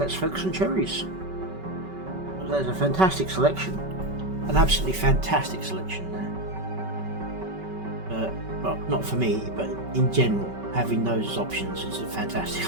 focus on cherries. There's a fantastic selection. An absolutely fantastic selection there. Well, not for me, but in general, having those as options is a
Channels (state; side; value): late; left; 5.3 ms